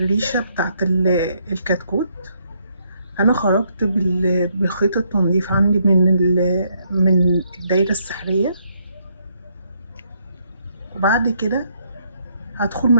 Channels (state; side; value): inverted; both; correlation -0.72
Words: بتاعت الكتكوت. انا خرجت بخيط التنظيف عندي من الدايرة السحرية، وبعد كده هدخل